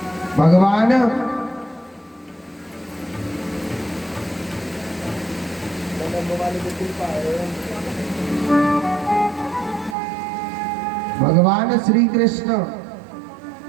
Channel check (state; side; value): drops out; left; at 10.0 s